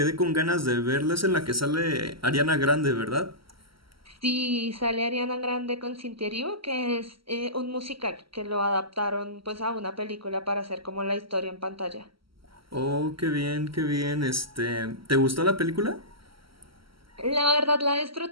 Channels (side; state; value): left; late; 0.75 ms